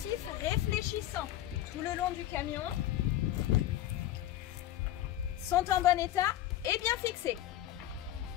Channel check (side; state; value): right; quieter; 13.3 dB